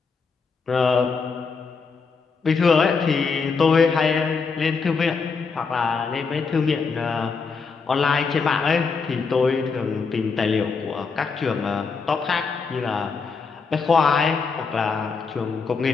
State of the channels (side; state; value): right; quieter; 5.0 dB